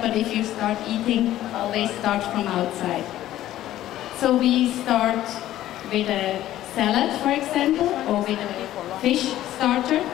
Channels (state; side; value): quieter; right; 13.6 dB